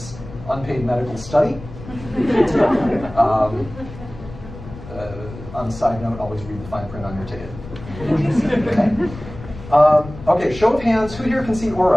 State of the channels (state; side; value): noise; left; rumble, 14 dB below the sound